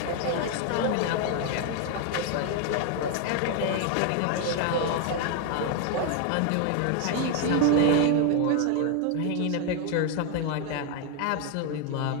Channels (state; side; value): different; both; correlation 0.01